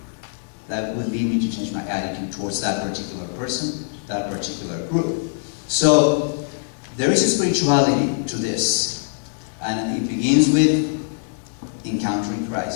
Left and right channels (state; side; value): silent; right; digital silence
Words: that will lead me to change my attitude towards that particular person, that particular group. So there is a spirituality to this, and it begins with encountering